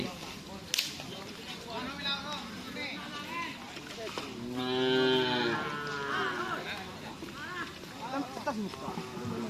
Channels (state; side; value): identical; both; correlation 1.00